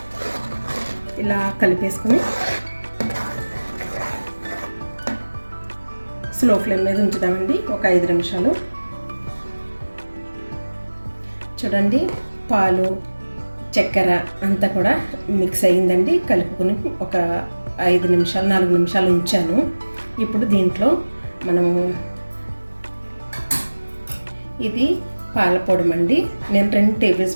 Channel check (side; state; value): both; inverted; correlation -1.00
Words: ఇలా కలిపేసుకుని స్లో ఫ్లేమ్ మీద ఉంచుదామండి ఒక 5 నిమిషాలు. చూడండి పాలు చక్కెర అంతా కూడా మిక్స్ అయ్యిందండి. కలుపుకొని ఒక 5 నిమిషాలు 4 నిమిషాలు ఉంచాను. ఇప్పుడు దీంట్లో మనము ఇది పాలపొడమండి. నేను 2 టేబుల్